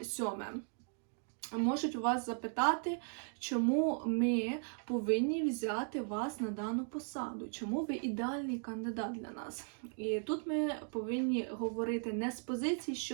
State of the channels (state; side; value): silent; left; 53 dB below the other